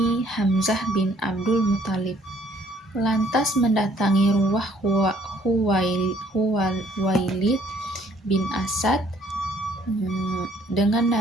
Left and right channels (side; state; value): both; normal; correlation 0.62